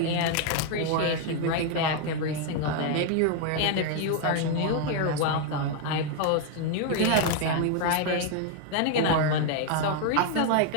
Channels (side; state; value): both; different; correlation 0.01